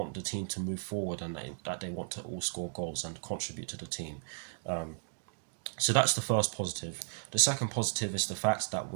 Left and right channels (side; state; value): left; silent; digital silence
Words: the team to move forward, and that they want to all score goals and contribute to the team. So that's the first positive. The second positive is the fact that